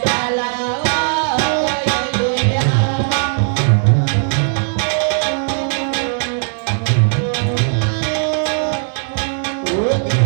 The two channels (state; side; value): silent; left; digital silence